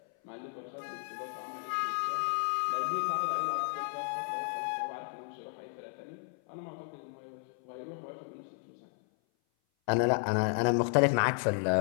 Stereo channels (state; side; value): silent; right; 56 dB below the other